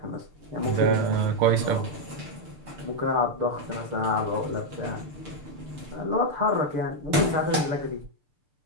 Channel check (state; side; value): late; left; 6.7 ms